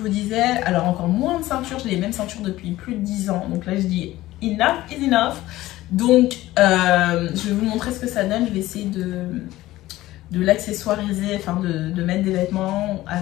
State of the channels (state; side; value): quieter; right; 16.5 dB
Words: disais, alors encore moins de ceinture, j'ai les mêmes ceintures depuis plus de 10 ans, donc là je dis enough is enough. Donc je vais vous montrer ce que ça donne, je vais essayer de l'accessoiriser, enfin de mettre des vêtements